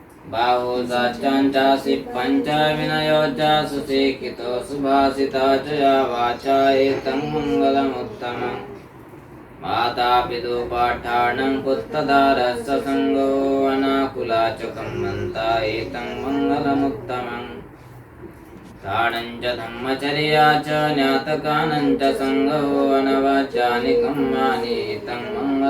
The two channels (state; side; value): identical; both; correlation 1.00